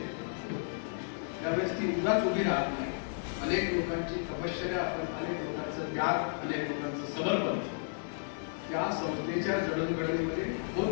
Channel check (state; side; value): silent; right; digital silence